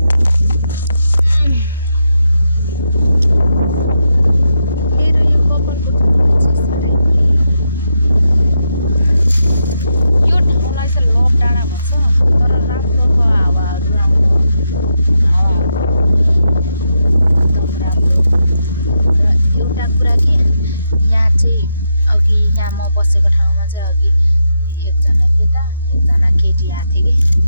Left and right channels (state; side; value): inverted; both; correlation -0.83